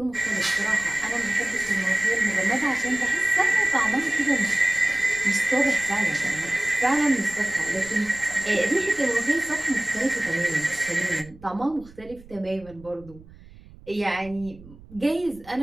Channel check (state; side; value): noise; right; rumble, 21 dB below the sound